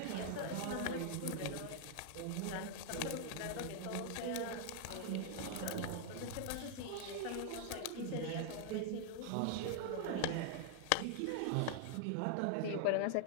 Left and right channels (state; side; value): different; both; correlation 0.00